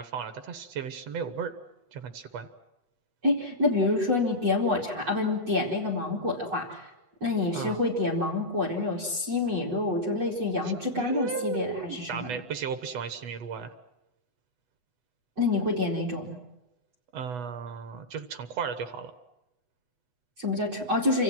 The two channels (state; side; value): late; left; 8.1 ms